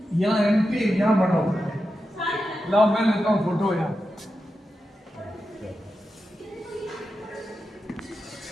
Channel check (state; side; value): normal; both; correlation 0.90